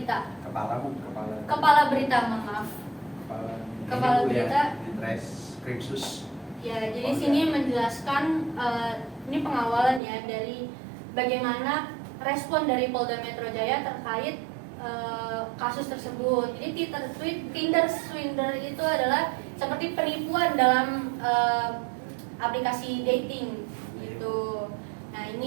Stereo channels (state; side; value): drops out; left; at 10.0 s